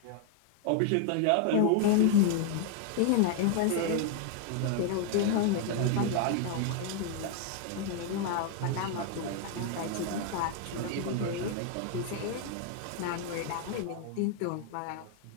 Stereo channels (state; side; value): different; both; correlation 0.00